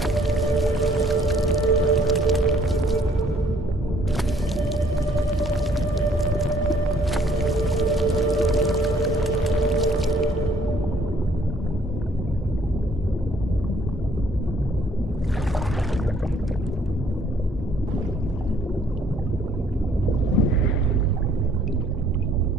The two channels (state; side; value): normal; both; correlation 0.62